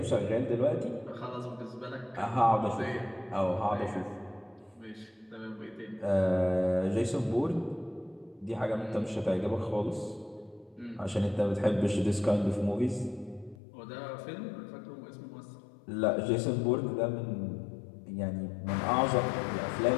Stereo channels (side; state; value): right; drops out; at 13.6 s